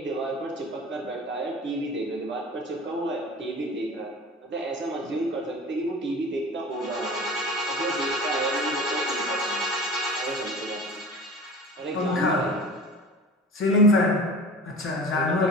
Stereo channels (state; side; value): normal; both; correlation 0.38